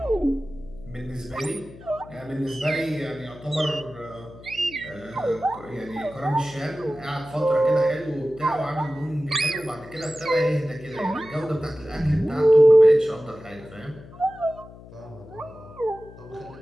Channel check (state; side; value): noise; left; hum, 19 dB below the sound